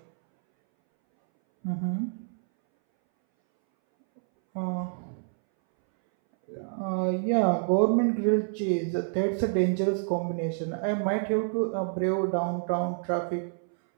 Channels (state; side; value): silent; left; 59 dB below the other